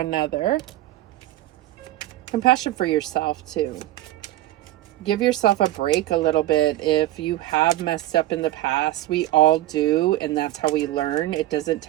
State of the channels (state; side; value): quieter; left; 15.5 dB